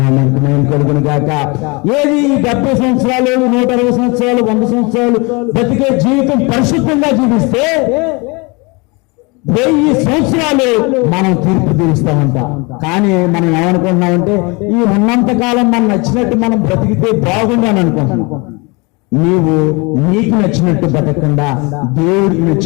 మహిమ కలుగును గాక. ఏది 70 సంవత్సరాలు, 160 సంవత్సరాలు, 100 సంవత్సరాలు బతికే జీవితం పరిశుద్ధంగా జీవిస్తే 1000 సంవత్సరాలు మనం తీర్పు తీరుస్తామంట. కానీ మనం ఏమనుకుంటున్నామంటే ఈ ఉన్నంత కాలం మనం నచ్చినట్టు మనం బ్రతికితే బాగుంది అని అనుకుంటున్నాం. నీవు నీకు నచ్చినట్టు బతకకుండా దేవుడికి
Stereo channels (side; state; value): right; quieter; 28.2 dB